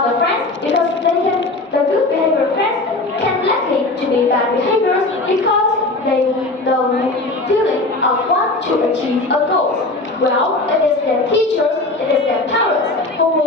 the friends because the good behavior friends can likely to be bad behaviors because the feeling of want to achieve a goal. Well, it is their teachers, it is their parents who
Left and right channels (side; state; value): right; quieter; 3.0 dB